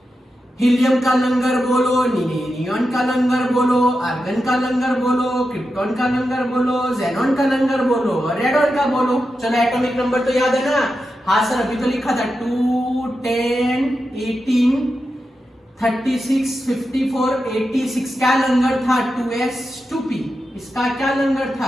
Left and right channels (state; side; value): normal; both; correlation 0.89